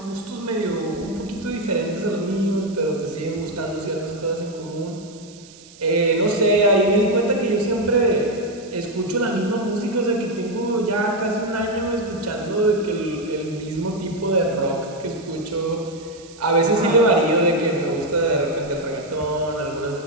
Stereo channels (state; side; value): noise; right; hiss, 22 dB below the sound